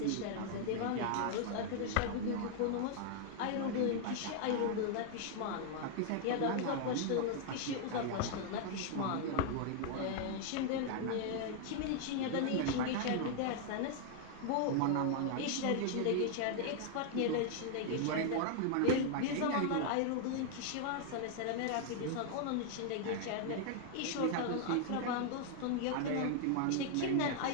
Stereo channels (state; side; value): different; both; correlation 0.00